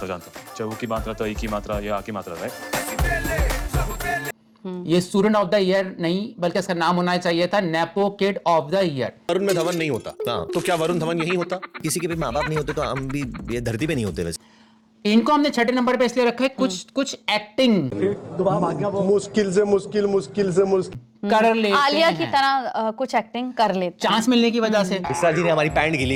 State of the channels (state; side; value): identical; both; correlation 1.00